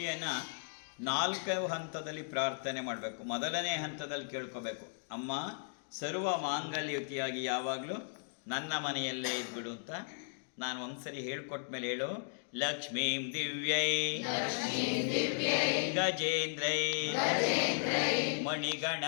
4 ಹಂತದಲ್ಲಿ ಪ್ರಾರ್ಥನೆ ಮಾಡಬೇಕು. ಮೊದಲನೇ ಹಂತದಲ್ಲಿ ಕೇಳ್ಕೋಬೇಕು, ಅಮ್ಮ ಸರ್ವ ಮಾಂಗಲ್ಯಯುತಿಯಾಗಿ ಯಾವಾಗಲೂ ನನ್ನ ಮನೆಯಲ್ಲೇ ಇದ್ಬಿಡು ಅಂತ. ನಾನು ಒಂದ್ಸರಿ ಹೇಳ್ಕೊಟ್ಟ ಮೇಲೆ ಹೇಳು. ಲಕ್ಷ್ಮೀಂ ದಿವ್ಯೈ ಗಜೇಂದ್ರೈ ಮಣಿಗಣ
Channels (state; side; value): silent; right; digital silence